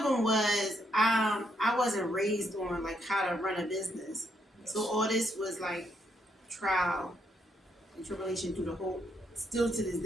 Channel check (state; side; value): normal; both; correlation 0.76